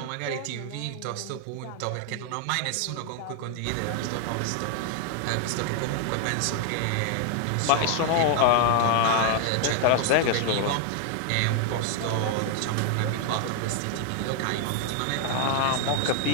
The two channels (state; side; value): different; both; correlation 0.00